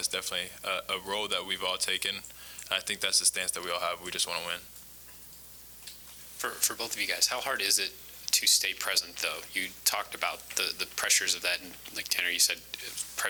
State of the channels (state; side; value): noise; right; hum, 25 dB below the sound